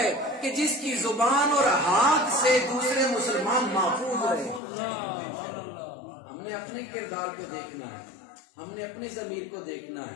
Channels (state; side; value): drops out; right; at 4.6 s